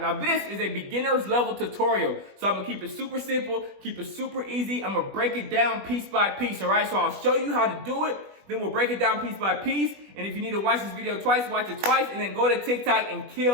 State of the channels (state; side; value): late; left; 20 ms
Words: Now this is a beginner's level tutorial. So I'm gonna keep it super simple, keep it super easy. I'm gonna break it down piece by piece, all right? So I'll show you how to do it, then we'll break it down piece by piece. And if you need to watch this video twice, watch it twice, and then go to TikTok and